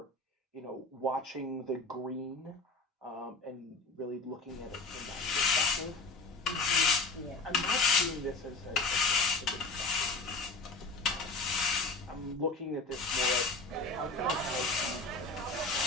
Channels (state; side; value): quieter; right; 3.4 dB